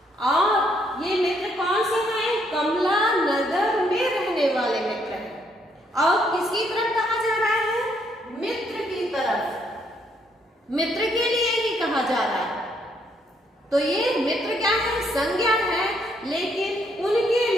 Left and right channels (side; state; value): both; normal; correlation 0.71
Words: और ये मित्र कौन से हैं? कमला नगर में रहने वाले मित्र हैं। और किसकी तरफ कहा जा रहा है? मित्र की तरफ, मित्र के लिए ही कहा जा रहा है। तो ये मित्र क्या है? संज्ञा है, लेकिन उनके